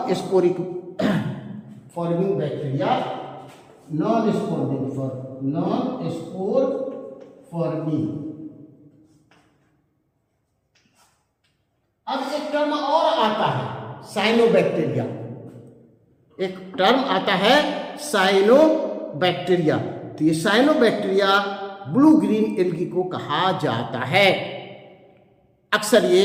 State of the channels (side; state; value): both; identical; correlation 1.00